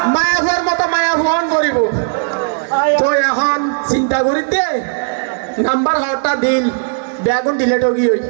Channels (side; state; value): left; silent; digital silence